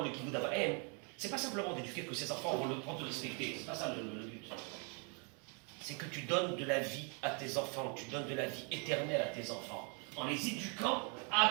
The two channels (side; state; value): left; quieter; 36.7 dB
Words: le kibbutz d'Abraham, c'est pas simplement d'éduquer que ses enfants vont te respecter, c'est pas ça le but. C'est que tu donnes de la vie à tes enfants, tu donnes de la vie éternelle à tes enfants, en les éduquant